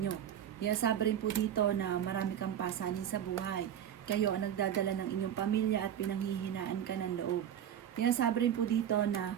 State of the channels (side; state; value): left; quieter; 9.9 dB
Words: Sabi rin po dito na marami kang pasanin sa buhay. Kayo ang nagdadala ng inyong pamilya at pinanghihinaan ka ng loob. Sabi rin po dito na